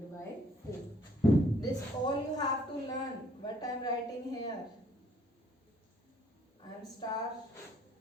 by 4. This all you have to learn. What I am writing here, I am star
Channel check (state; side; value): normal; both; correlation 0.63